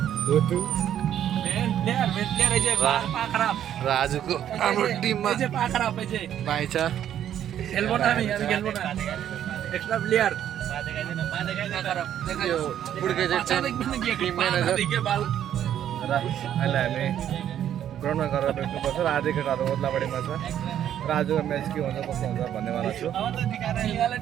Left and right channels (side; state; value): left; quieter; 10.5 dB